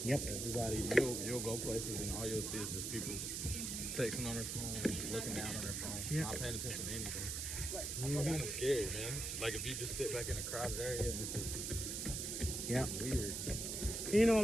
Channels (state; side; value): noise; right; hiss, 3 dB below the sound